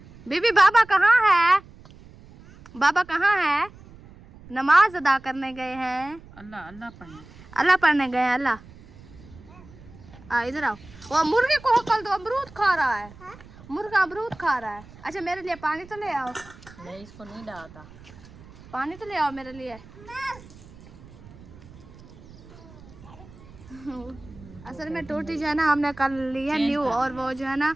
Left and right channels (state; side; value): noise; right; rumble, 21 dB below the sound